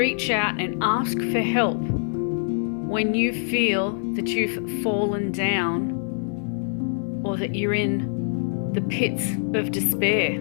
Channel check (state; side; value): silent; right; digital silence